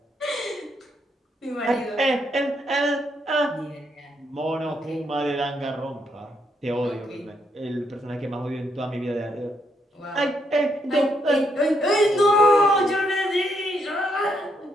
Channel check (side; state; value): both; normal; correlation 0.76